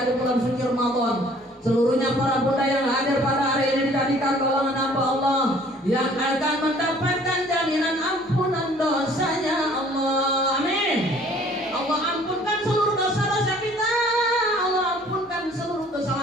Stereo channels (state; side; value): normal; both; correlation 0.55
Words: di bulan suci Ramadan. Seluruhnya para bunda yang hadir pada hari ini dijadikan golongan hamba Allah yang akan mendapatkan jaminan ampunan dosanya Allah. Amin. Allah ampunkan seluruh dosa-dosa kita, Allah ampunkan seluruh